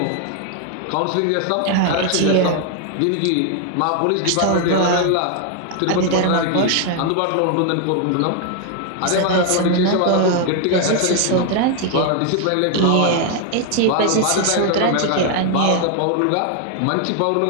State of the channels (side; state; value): both; different; correlation 0.00